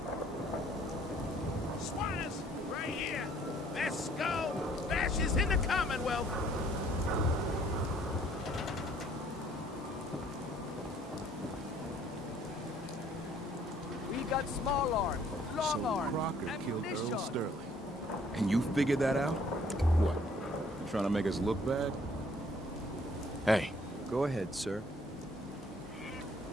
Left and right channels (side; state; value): both; normal; correlation 0.60